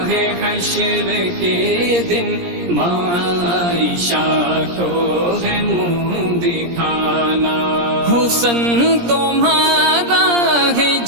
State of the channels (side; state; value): left; late; 17 ms